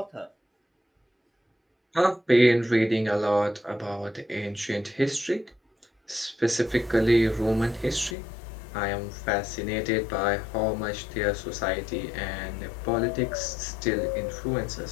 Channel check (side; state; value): right; drops out; at 8.2 s